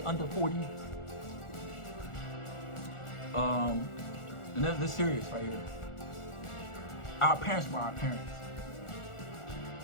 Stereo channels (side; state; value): right; late; 1.4 ms